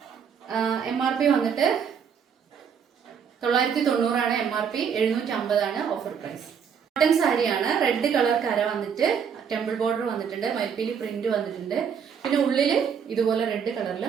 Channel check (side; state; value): left; quieter; 7.2 dB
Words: MRP വന്നിട്ട് 990 ആണ്. MRP 750 ആണ്. Offer price. കോട്ടൺ സാരിയാണ്. റെഡ് കളർ കര വന്നിട്ട് ടെമ്പിൾ ബോർഡർ വന്നിട്ടുണ്ട്. മയിൽപ്പീലി പ്രിന്റ് വന്നിട്ടുണ്ട്. പിന്നെ ഉള്ളില് ഇതുപോലെ റെഡ് കളറിൽ